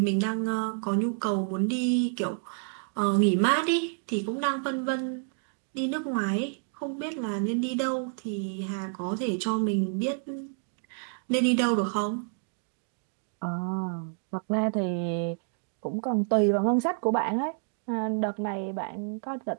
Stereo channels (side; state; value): left; silent; 59 dB below the other